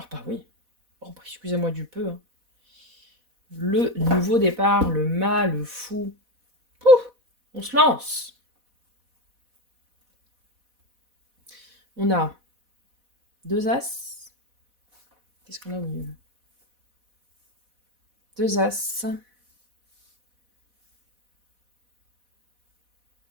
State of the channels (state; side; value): late; left; 4.1 ms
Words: bah oui. Oh bah, excusez-moi du peu. Hein. Le nouveau départ, le mal, le fou. Pouf, on se lance. On a 2 as. Qu'est-ce qu'on a au milieu? 2 as.